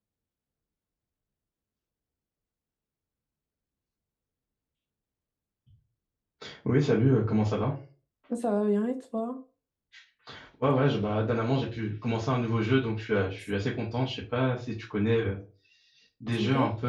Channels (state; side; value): identical; both; correlation 1.00